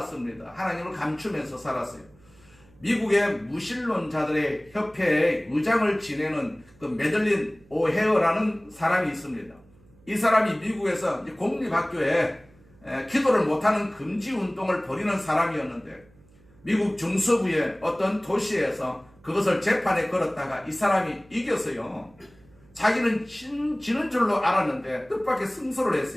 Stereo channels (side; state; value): right; noise; hum, 28 dB below the sound